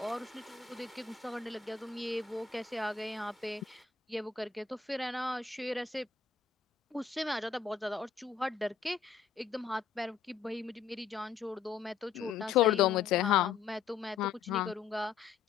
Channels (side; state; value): right; quieter; 6.5 dB